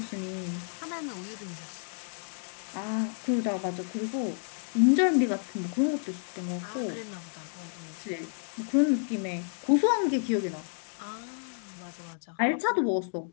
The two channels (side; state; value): right; silent; digital silence